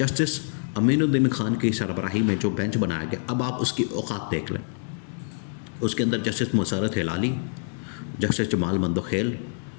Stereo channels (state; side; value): silent; right; 61 dB below the other